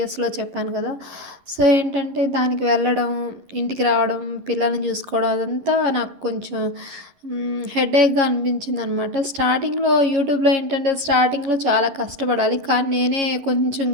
చెప్పాను కదా. సో ఏంటంటే దానికి వెళ్ళడం, ఇంటికి రావడం, పిల్లల్ని చూసుకోవడం అదంతా నాకు కొంచెం హెడేక్గా అనిపించింది అనమాట. స్టార్టింగ్లో యూట్యూబ్లో ఏంటంటే స్టార్టింగ్లో చాలా కష్టపడాలి, కానీ నేనే కొంచెం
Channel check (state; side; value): late; left; 11 ms